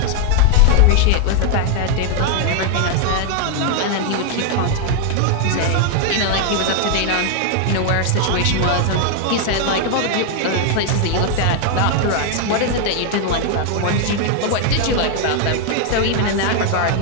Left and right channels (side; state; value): both; different; correlation 0.00